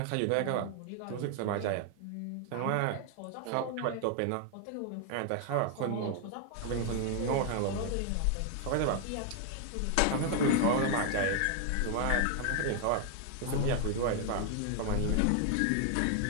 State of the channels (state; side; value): different; both; correlation 0.00